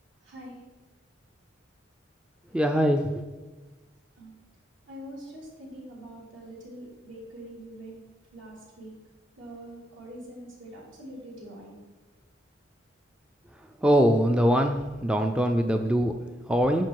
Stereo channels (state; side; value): normal; both; correlation 0.82